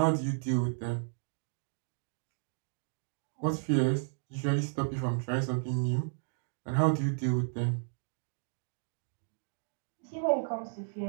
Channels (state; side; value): silent; left; digital silence